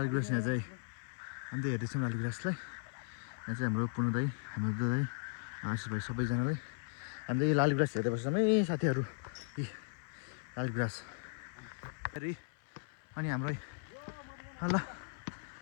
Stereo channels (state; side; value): silent; right; 53 dB below the other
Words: गुराँस यहाँ चाहिँ हामी त हेर्दैछौँ लाली गुराँसलाई। यहाँ चाहिँ हाम्रो पूर्ण दाई, हाम्रो दुध दाई, आशिष भाइ सबैजनाले हामी त यो लाली गुराँस हेर्दै बस्छौँ है साथीहरू। लाली गुराँस फेरि अनि हाम्रो ल